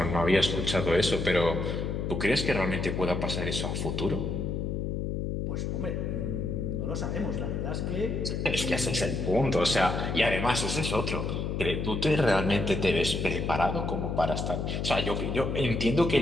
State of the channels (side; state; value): left; noise; hum, 2 dB below the sound